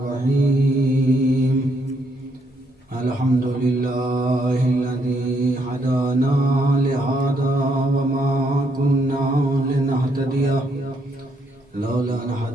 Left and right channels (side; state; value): both; normal; correlation 0.74